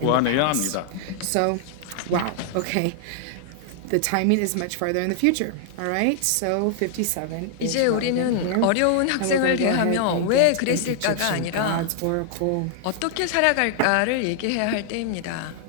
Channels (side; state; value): both; different; correlation 0.00